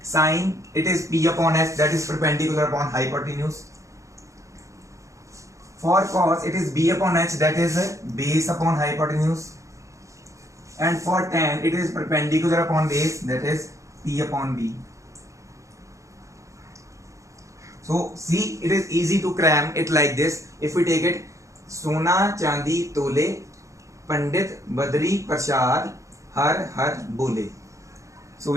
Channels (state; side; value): late; left; 0.15 ms